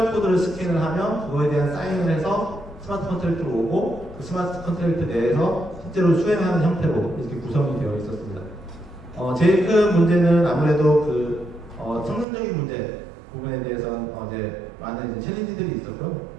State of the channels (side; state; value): left; drops out; at 12.2 s